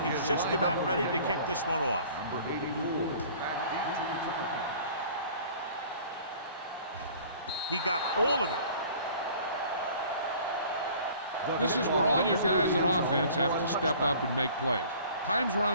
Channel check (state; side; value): inverted; both; correlation -0.49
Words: he's just about ready to kick this one off. Number 84, back deep to return. He got all of it. This is where all your guys on offense have to step up and make plays. Time's